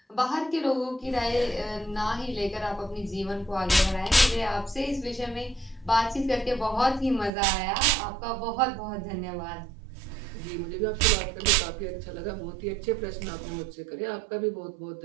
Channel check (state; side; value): drops out; left; at 7.3 s